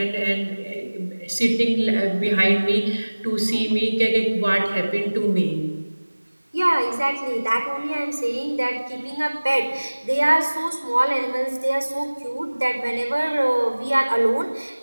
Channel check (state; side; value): inverted; both; correlation -1.00